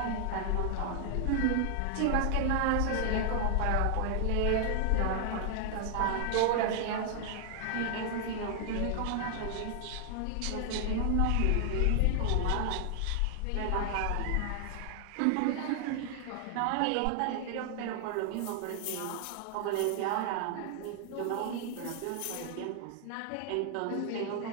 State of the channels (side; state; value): both; different; correlation 0.00